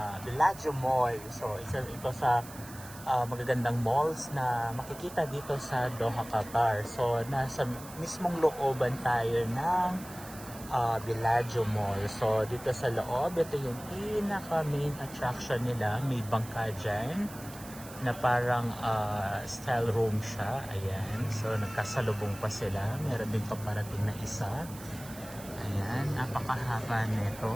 Bellagio Mall. So ito sa magagandang malls na makikita dito sa Doha, Qatar. So nasa mismong looban tayo ng Bellagio Mall. So dito sa loob, ito yung pinaka main attraction nila. May bangka dyan na parang style room siya. Ayan. So nagkasalubong pa sila. Meron din paparating na isa. Ayan, napakahaba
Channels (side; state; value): right; noise; hiss, 16 dB below the sound